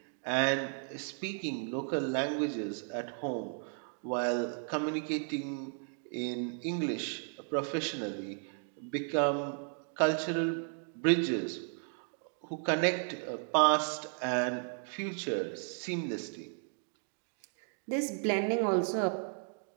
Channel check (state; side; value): silent; left; 55 dB below the other